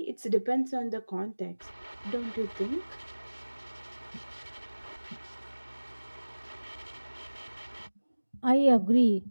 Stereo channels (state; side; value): inverted; both; correlation -1.00